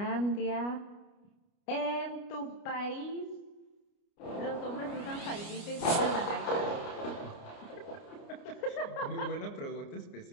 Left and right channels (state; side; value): late; right; 29 ms